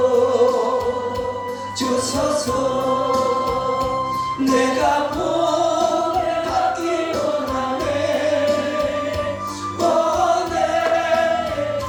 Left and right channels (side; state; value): both; identical; correlation 1.00